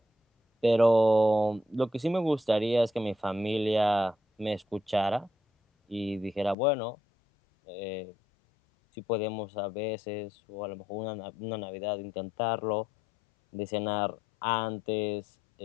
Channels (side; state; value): right; drops out; at 6.6 s